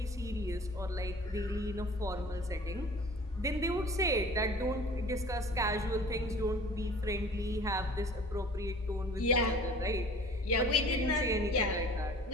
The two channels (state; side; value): normal; both; correlation 0.46